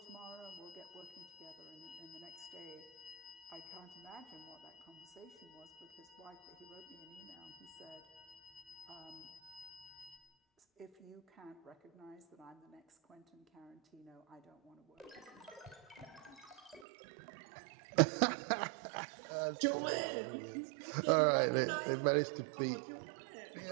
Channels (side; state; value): left; drops out; at 16.9 s